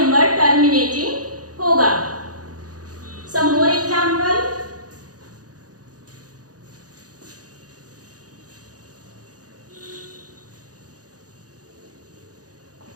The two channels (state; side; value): late; left; 0.68 ms